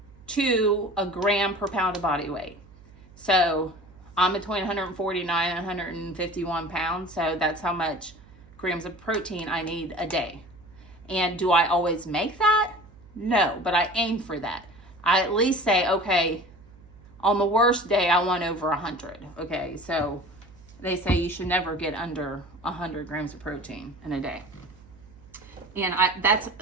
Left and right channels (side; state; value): right; noise; hum, 23 dB below the sound